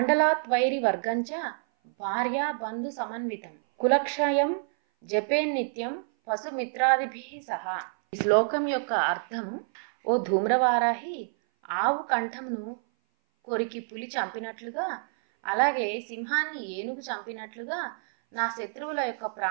వర్గంచ భార్యా బంధు సమన్వితం కులక్షయం జపేన్నిత్యం పశుమిత్రాదిభి సహా. ఈ శ్లోకం యొక్క అర్థము, ఓ ధూమ్రవారాహి, ఆవు కంఠంను కొరికి పులి చంపినట్లుగా, అలాగే సింహాన్ని ఏనుగు చంపినట్లుగా నా శత్రువుల యొక్క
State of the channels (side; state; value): left; silent; 57 dB below the other